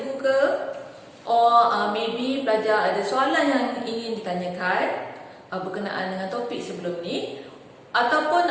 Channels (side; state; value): both; identical; correlation 1.00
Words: ke, or maybe pelajar ada soalan yang ingin ditanyakan berkenaan dengan topik sebelum ni, ataupun